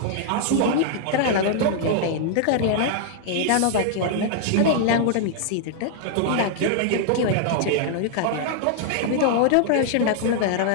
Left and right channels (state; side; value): different; both; correlation 0.00